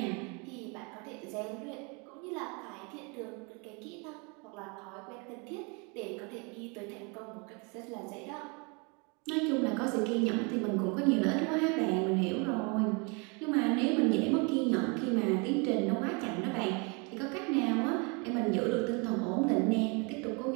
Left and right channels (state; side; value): quieter; left; 31.9 dB